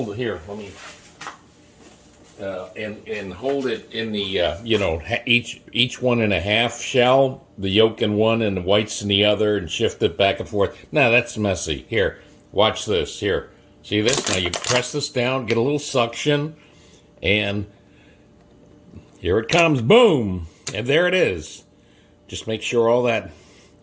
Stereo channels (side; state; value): both; identical; correlation 1.00